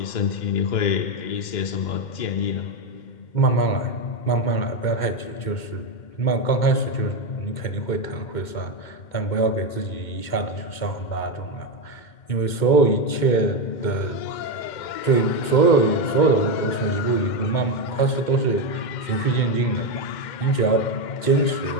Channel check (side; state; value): right; late; 2.1 ms